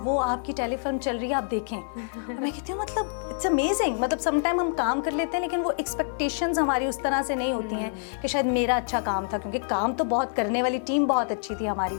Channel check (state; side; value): silent; right; digital silence